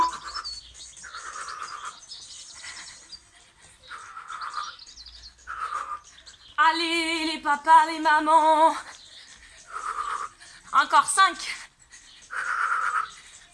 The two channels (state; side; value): identical; both; correlation 1.00